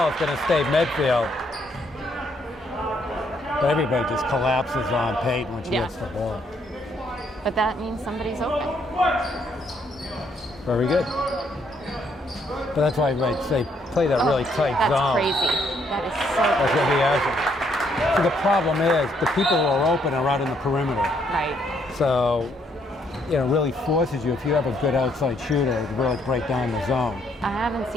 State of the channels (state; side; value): normal; both; correlation 0.71